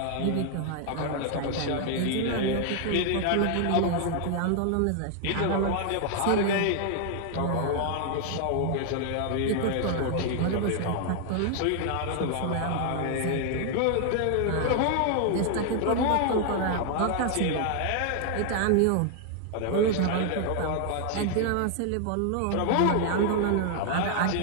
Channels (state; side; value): different; both; correlation 0.00